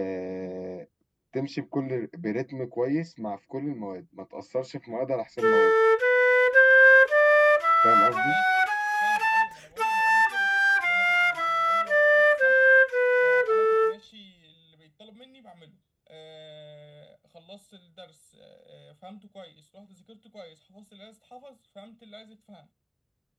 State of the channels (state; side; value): identical; both; correlation 1.00